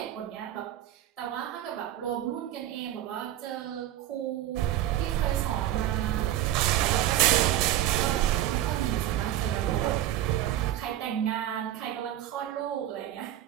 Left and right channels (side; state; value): left; quieter; 12.8 dB